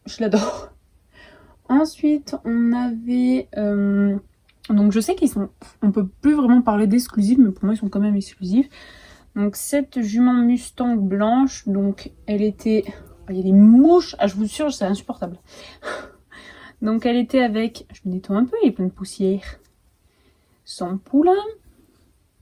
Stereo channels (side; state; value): both; identical; correlation 1.00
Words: je l'adore. Ensuite on avait... donc je sais qu'ils sont... On peut plus vraiment parler d'exclusifs, mais pour moi ils sont quand même exclusifs. Donc cette jument Mustang blanche, donc elle était... Il y a des mouches, ah je vous jure c'est insupportable. Donc elle était avec... Je me nettoie un peu, il y a plein de poussière. Son poulain.